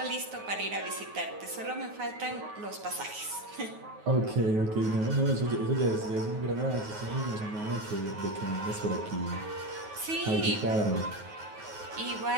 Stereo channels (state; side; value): late; left; 9.4 ms